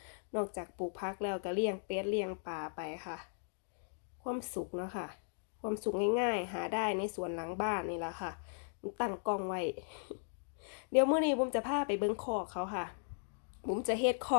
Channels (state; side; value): silent; right; digital silence